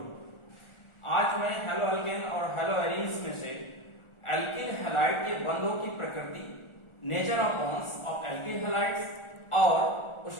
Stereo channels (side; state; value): right; late; 1.4 ms